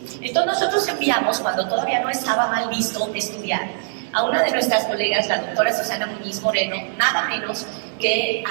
Entonces nosotros enviamos, cuando todavía no estaba mal visto estudiar, a una de nuestras colegas, la doctora Susana Muñiz Moreno, nada menos que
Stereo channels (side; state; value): left; silent; digital silence